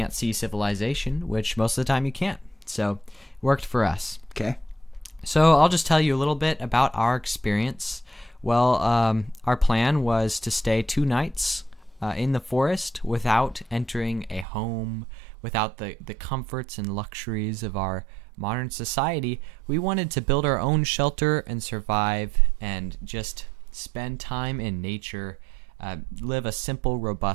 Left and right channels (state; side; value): drops out; left; at 14.5 s